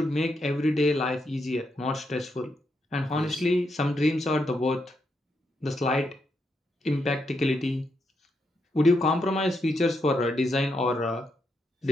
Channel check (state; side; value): normal; both; correlation 0.81